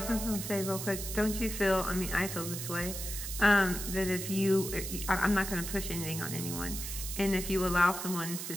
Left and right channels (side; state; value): right; noise; hiss, 6 dB below the sound